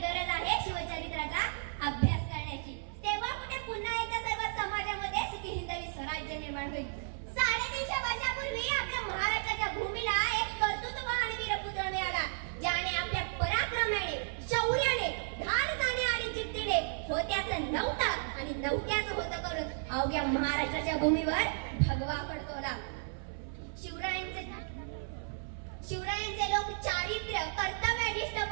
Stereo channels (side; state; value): left; silent; 55 dB below the other